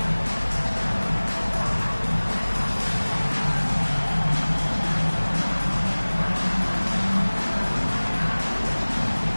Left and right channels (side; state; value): both; inverted; correlation -1.00